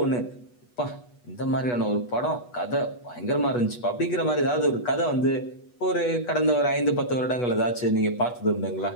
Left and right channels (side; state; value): right; late; 8.2 ms